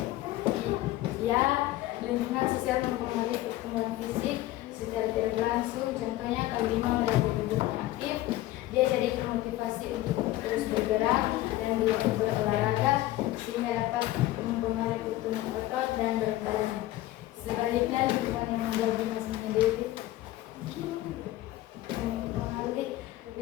Ya, lingkungan sosial mempengaruhi pertumbuhan fisik secara tidak langsung. Contohnya, kalau Bima berada di lingkungan aktif, dia jadi termotivasi untuk terus bergerak dan berolahraga sehingga dapat mempengaruhi pertumbuhan otot dan berat badan. Sebaliknya, lingkungan yang membuat Bima sendiri mempengaruhi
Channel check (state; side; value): quieter; right; 16.1 dB